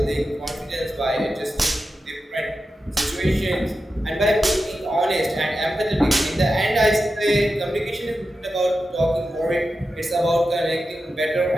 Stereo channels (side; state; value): both; normal; correlation 0.91